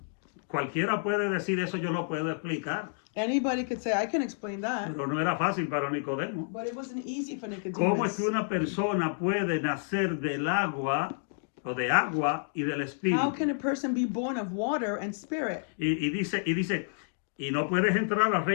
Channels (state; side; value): silent; right; digital silence